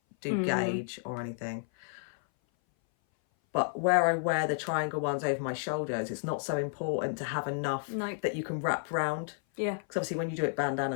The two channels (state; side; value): silent; right; 57 dB below the other